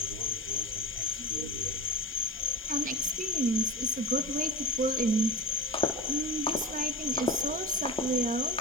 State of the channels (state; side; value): normal; both; correlation 0.26